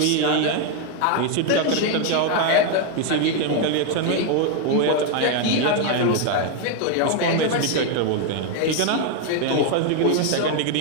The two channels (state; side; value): different; both; correlation 0.01